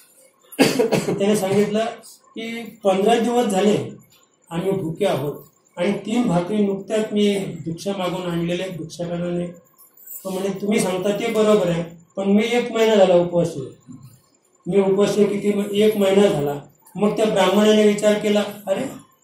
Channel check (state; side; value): identical; both; correlation 1.00